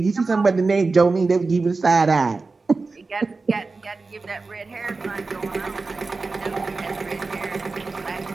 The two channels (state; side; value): quieter; left; 3.9 dB